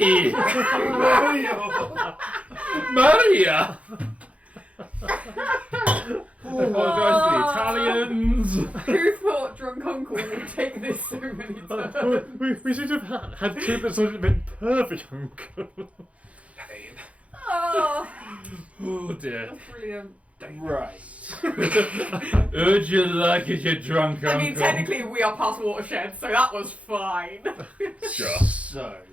Mario! Maria. I apologise to the Italians. Who thought drunk uncle would take this so many times? We should have had two that sort of been perfect. Pain. Oh, Oh dear. that's brilliant. Right. Would you like it, you drunk uncle? I mean, technically we are past watershed, so that was fine. Sure. So,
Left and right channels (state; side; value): late; left; 0.065 ms